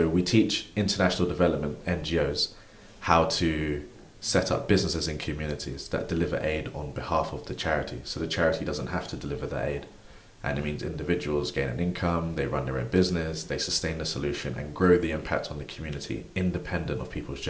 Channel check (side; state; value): both; identical; correlation 1.00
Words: we teach international development NGOs how to set up businesses in communities that deliver aid on behalf of the charity. So the charity doesn't have to deliver the aid. And it means individuals gain an income, they run their own business, they sustain the solution and grow the impact on the community independent of people's